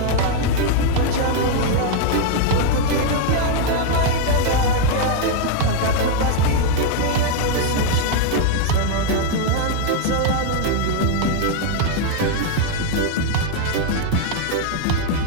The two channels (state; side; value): different; both; correlation 0.00